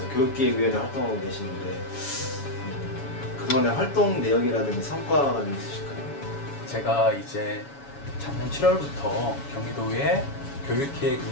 교육기획위원회 활동하고 계시는데 그동안의 활동 내역이라든지 성과가 좀 있으실까요? 제가 이제 작년 7월부터 경기도의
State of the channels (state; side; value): late; right; 7.1 ms